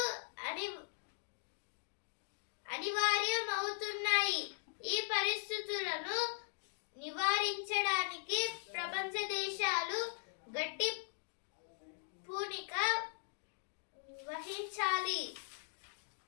అనివార్యమవుతున్నాయి. ఈ పరిస్థితులను నివారించడానికి ప్రపంచ దేశాలు గట్టి పూనిక వహించాలి.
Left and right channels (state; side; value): silent; right; digital silence